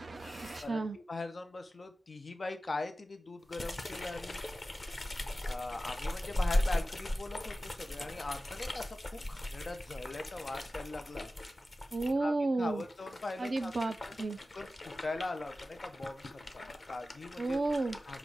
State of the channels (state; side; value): normal; both; correlation 0.95